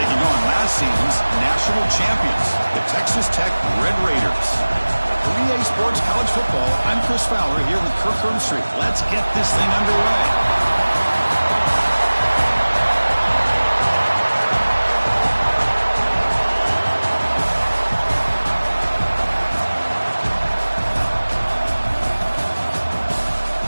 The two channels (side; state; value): both; inverted; correlation -1.00